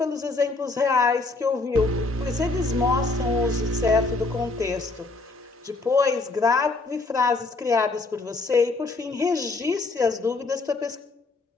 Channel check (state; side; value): quieter; right; 3.5 dB